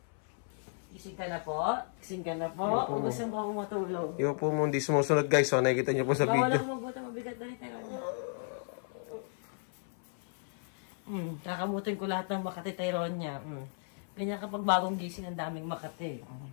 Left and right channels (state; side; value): silent; right; 55 dB below the other